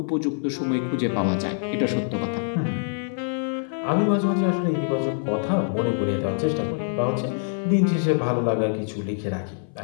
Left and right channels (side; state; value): right; silent; 57 dB below the other